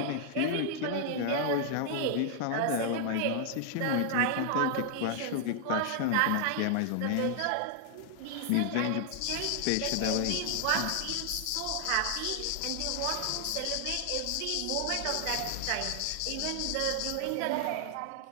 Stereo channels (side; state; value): both; different; correlation 0.00